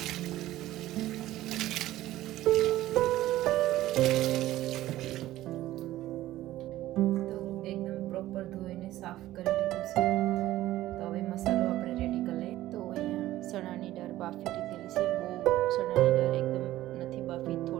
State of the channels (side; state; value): left; quieter; 15.1 dB